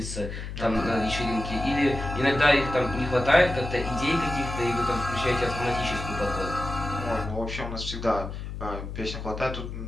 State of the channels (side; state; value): left; noise; hum, 7 dB below the sound